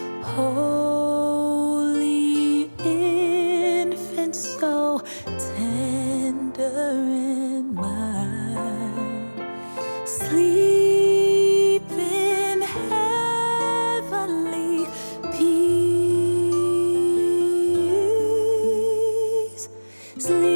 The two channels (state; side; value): inverted; both; correlation -1.00